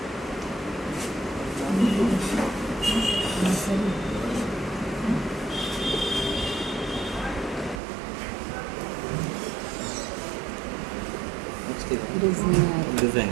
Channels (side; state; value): left; drops out; at 7.8 s